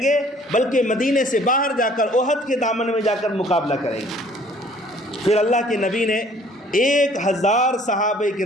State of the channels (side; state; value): both; normal; correlation 0.56